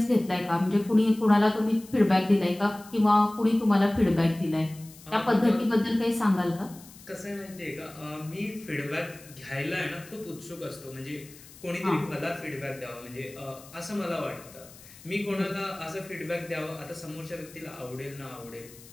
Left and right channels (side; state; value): left; noise; hiss, 20 dB below the sound